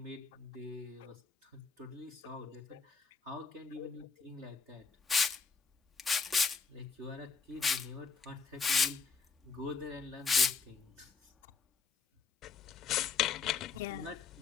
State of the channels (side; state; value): right; quieter; 5.2 dB